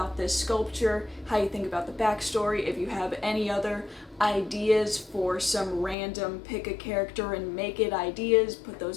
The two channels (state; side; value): drops out; right; at 6.0 s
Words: this sculpture, how you think about the backstory, if you have any other ideas for some random pick a character and make it ideas, put those